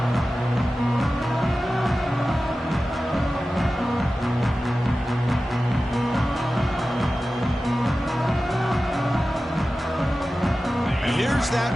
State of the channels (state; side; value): normal; both; correlation 0.95